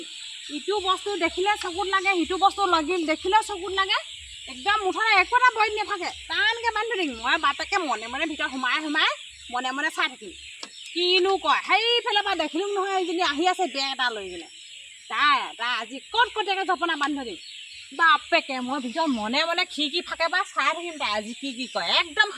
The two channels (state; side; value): identical; both; correlation 1.00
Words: ইটো বস্তু দেখিলে চকুত লাগে, সিটো বস্তু দেখিলে চকুত লাগে, একদম মুঠতে একো এটা বইত নাথাকে, টানকৈ বান্ধি থৈ দিম। মই বাপেকে মনে মনে ভিতৰত সোমাই মনে মনে চাই থাকিম কিনো কয়। সেইফালৰ পৰা দেখিলোঁ নহয় এইজনী আহি আছে বেগ এটা লৈ কিনে, তাই আজি কটকটীয়াকৈ জপনা বান্ধি থৈ দিম। বাপেকে মই ভিতৰত মনে মনে খিৰিকী ফাকে বা চাই থাকিম তাই আজি কি কয়। একদম